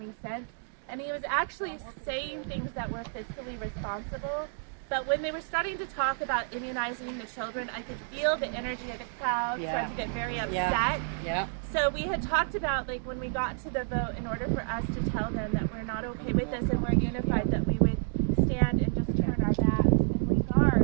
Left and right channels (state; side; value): silent; left; digital silence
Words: sense. And he was actually saying things that were fiscally responsible. But when they were starting to talk about immunizing the children, I could feel the energy of the crowd start to get very upset. Yeah. So we had talked about, like, when we got to the vote, in order for us to tell them that we're not okay with this and we're unified, that we would stand and just turn our backs and link